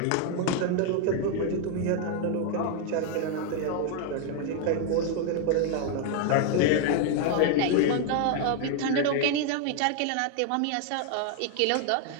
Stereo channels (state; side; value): different; both; correlation 0.00